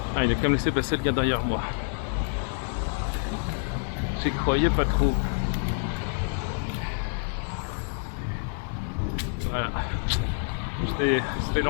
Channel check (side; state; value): right; silent; 60 dB below the other